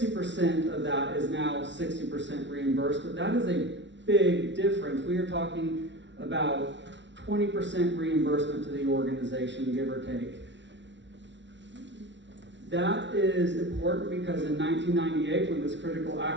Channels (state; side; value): late; left; 0.53 ms